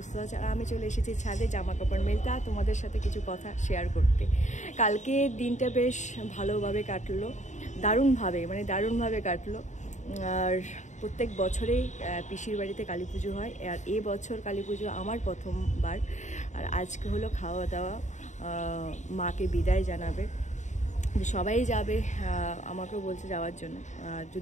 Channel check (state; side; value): late; right; 0.35 ms